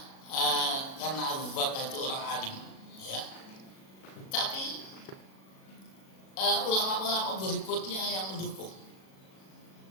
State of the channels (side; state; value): right; late; 37 ms